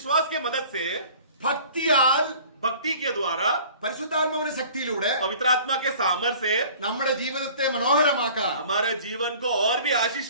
के मदद से, ഭക്തിയാൽ भक्ति के द्वारा, പരിശുദ്ധാത്മാവിന്റെ ശക്തിയിലൂടെ पवित्र आत्मा के सामर्थ्य से നമ്മുടെ ജീവിതത്തെ മനോഹരമാക്കാൻ, हमारे जीवन को और भी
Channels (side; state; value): both; inverted; correlation -0.48